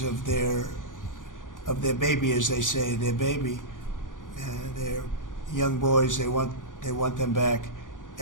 of their baby, as they say, their baby, their young boys. They want them back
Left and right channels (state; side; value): late; right; 0.88 ms